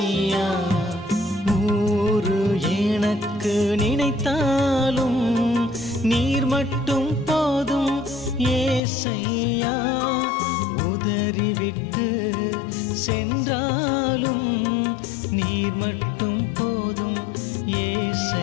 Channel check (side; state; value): right; drops out; at 8.8 s